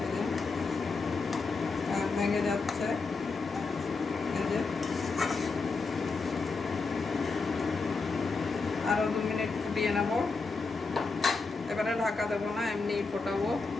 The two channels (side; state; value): right; quieter; 4.2 dB